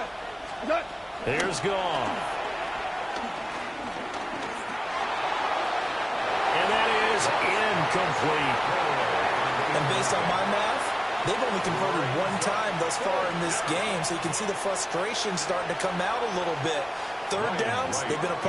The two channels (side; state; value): both; identical; correlation 1.00